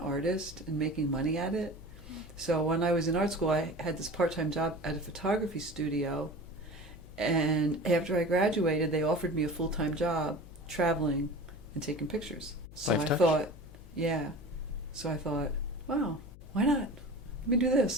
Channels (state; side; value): noise; left; hum, 18 dB below the sound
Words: and making money at it. So when I was in art school, I had this part-time job at a photography studio. And after I graduated, they offered me a full-time job traveling and taking pictures. So I thought, wow, why not? Let me do